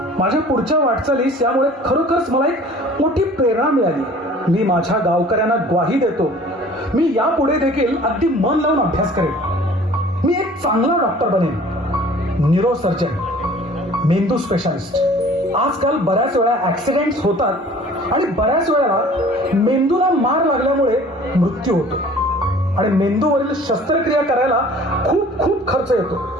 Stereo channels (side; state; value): both; normal; correlation 0.49